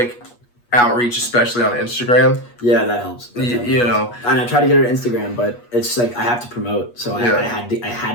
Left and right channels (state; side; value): late; right; 8.3 ms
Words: outreach, especially on Instagram. Yeah, that helps. You know, and I tried to get her Instagram, but it's like I have to promote, so Yeah. I had